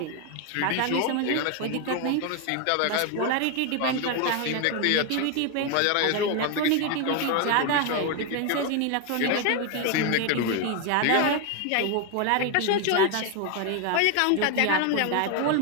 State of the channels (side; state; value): both; different; correlation 0.01